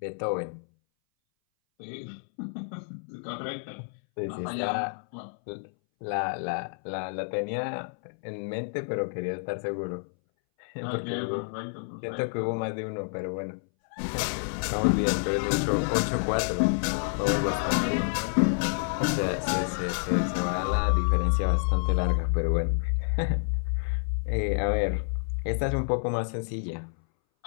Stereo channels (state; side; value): silent; right; 59 dB below the other